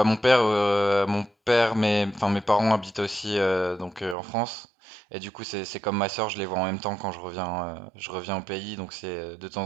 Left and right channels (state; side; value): drops out; left; at 4.2 s